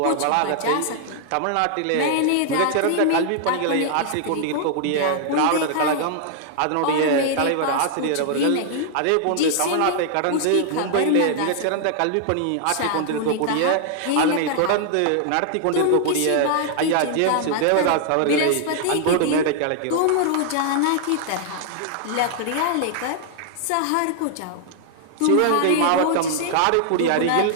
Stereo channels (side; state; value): both; different; correlation 0.00